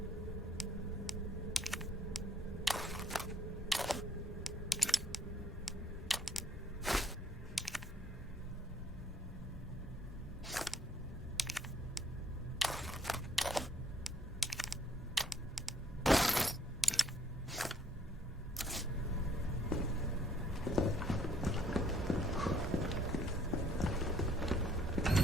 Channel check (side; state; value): both; normal; correlation 0.63